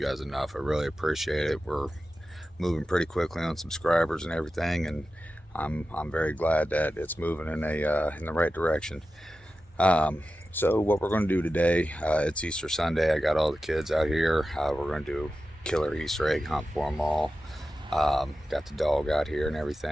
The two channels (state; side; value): normal; both; correlation 0.93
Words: enough. I really appreciate it. We're moving pretty quickly on subscribers and everything, and I'm very glad that it's moving in the right direction. Um, so what we're going to do today, it's Easter Sunday. I got all the kids out here. We're going to do killer Easter egg hunt for them all. Got the dog out here and